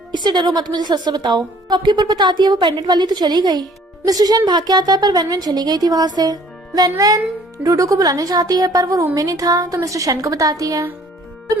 इससे डरो मत, मुझे सच से बताओ। शॉपकीपर बताती है, वो पेंडेंट वाली तो चली गई। मिस्टर शेन भाग के आता है पर वेनवेन चली गई थी वहाँ से। वेनवेन डूडू को बुलाने चाहती है पर वो रूम में नहीं था तो मिस्टर शेन को बताती है। तो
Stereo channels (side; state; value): both; normal; correlation 0.56